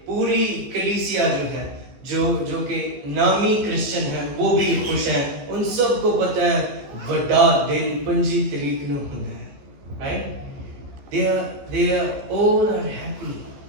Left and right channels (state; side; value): late; left; 15 ms